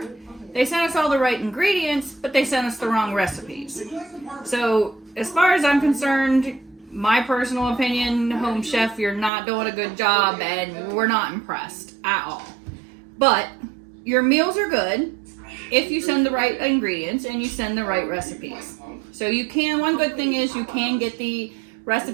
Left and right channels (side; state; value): left; drops out; at 9.3 s